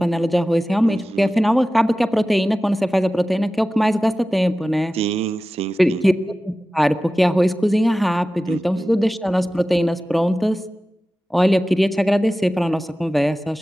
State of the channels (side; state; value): both; normal; correlation 0.95